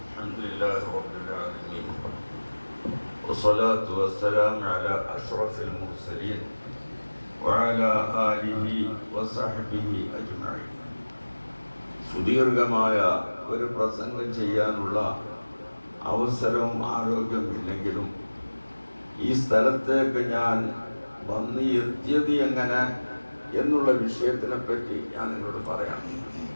الحمد لله رب العالمين والصلاة والسلام على أشرف المرسلين وعلى آله وصحبه أجمعين. സുദീർഘമായ ഒരു പ്രസംഗം ചെയ്യാനുള്ള അവസരവും ആരോഗ്യമില്ലെങ്കിലും ഈ സ്ഥലത്തേക്ക് ഞാൻ വന്ന് എത്തിയത് എങ്ങനെ എന്നുള്ള വിഷയത്തിനെ പറ്റി ഞാൻ നിങ്ങളോട് പറയാം.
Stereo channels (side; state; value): both; inverted; correlation -1.00